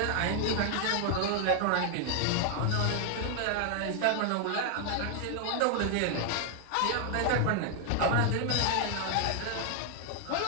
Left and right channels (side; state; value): both; different; correlation 0.00